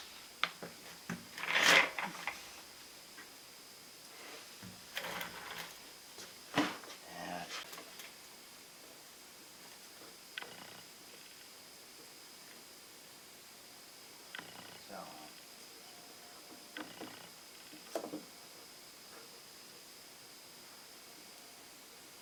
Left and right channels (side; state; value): both; identical; correlation 1.00